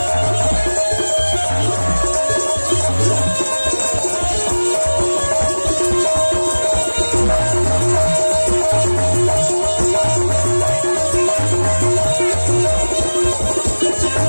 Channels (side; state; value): both; inverted; correlation -1.00